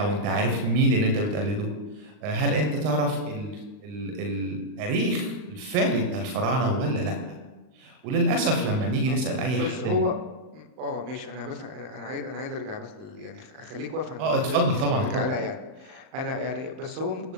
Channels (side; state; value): left; late; 39 ms